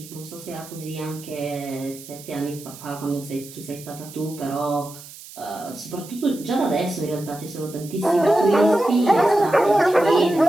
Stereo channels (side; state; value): right; noise; hiss, 17 dB below the sound